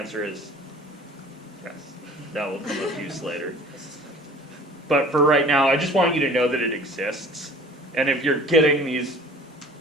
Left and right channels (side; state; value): both; normal; correlation 0.47